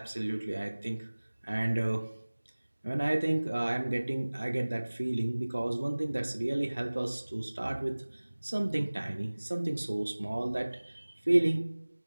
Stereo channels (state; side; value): inverted; both; correlation -1.00